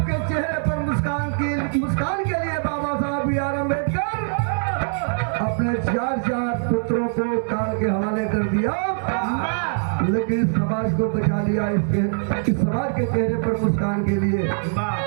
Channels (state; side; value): silent; left; 64 dB below the other